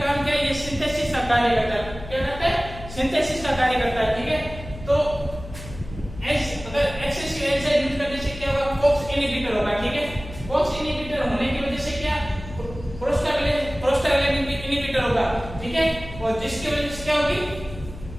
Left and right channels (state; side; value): noise; left; hum, 14 dB below the sound